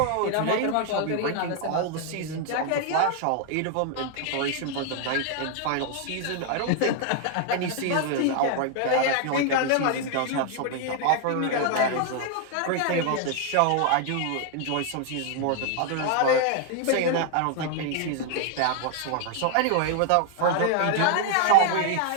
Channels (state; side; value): different; both; correlation 0.00